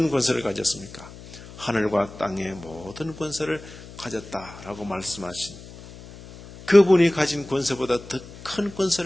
권세를 가졌습니까? 하늘과 땅의 모든 권세를 가졌다라고 말씀하신 그분이 가진 권세보다 더 큰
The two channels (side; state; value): left; noise; hum, 17 dB below the sound